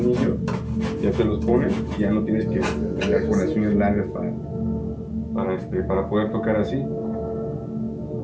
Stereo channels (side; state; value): both; identical; correlation 1.00